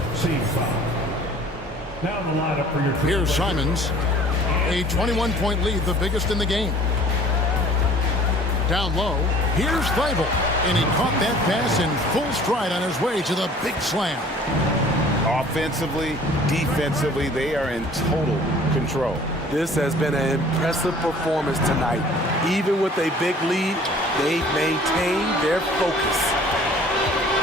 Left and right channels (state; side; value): normal; both; correlation 0.51